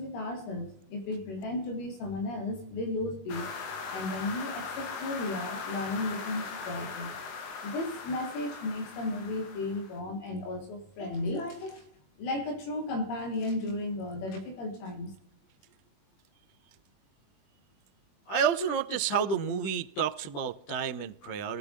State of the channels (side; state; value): right; late; 21 ms